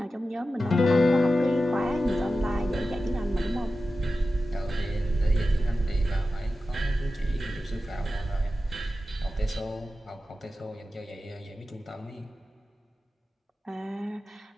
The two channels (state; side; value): normal; both; correlation 0.93